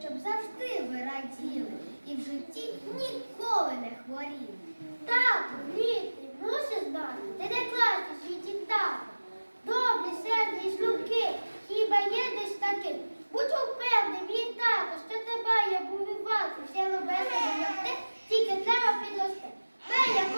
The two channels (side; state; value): both; inverted; correlation -1.00